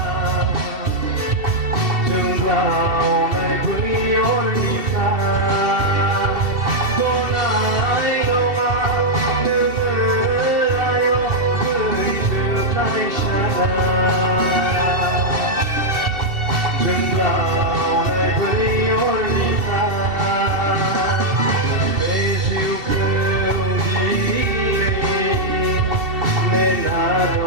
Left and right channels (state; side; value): late; left; 2.7 ms